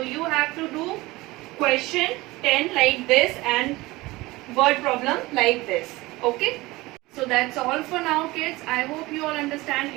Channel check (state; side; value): quieter; left; 20.6 dB